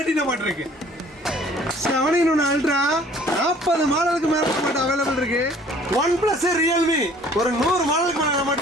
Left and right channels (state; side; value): normal; both; correlation 0.54